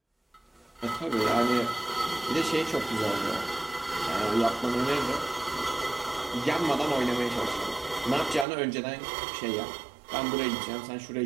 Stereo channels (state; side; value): drops out; left; at 8.5 s